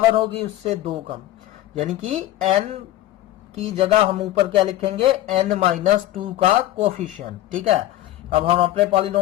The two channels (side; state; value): right; quieter; 14.2 dB